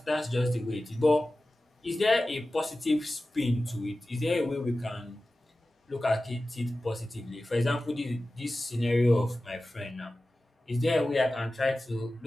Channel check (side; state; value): both; normal; correlation 0.95